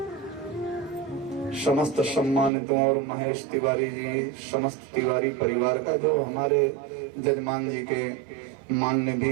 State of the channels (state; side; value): drops out; left; at 2.5 s